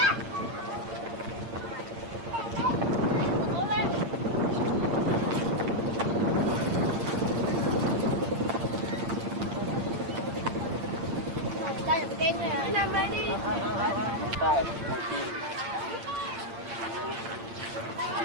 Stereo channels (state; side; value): late; left; 8.7 ms